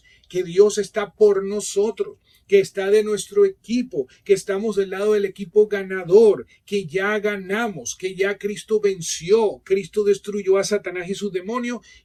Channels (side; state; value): both; identical; correlation 1.00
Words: que Dios está por nosotros, que está de nuestro equipo, que estamos del lado del equipo ganador, que ya ganamos, que ya Cristo venció, Cristo destruyó a Satanás y sus demonios,